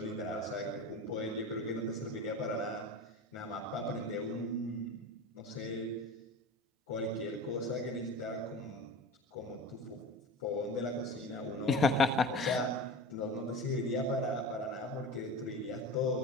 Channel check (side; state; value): both; normal; correlation 0.32